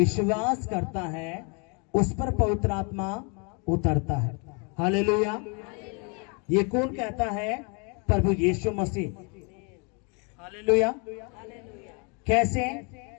करता है, उस पर पवित्र आत्मा उतरता है। हालेलुया। ये कौन कहता है? प्रभु यीशु मसीह। हालेलुया। कैसे?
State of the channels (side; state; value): right; quieter; 34.2 dB